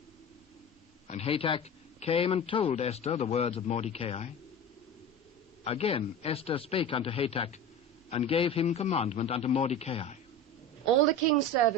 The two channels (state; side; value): normal; both; correlation 0.31